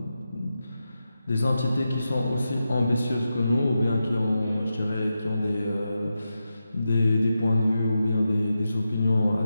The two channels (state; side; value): inverted; both; correlation -0.90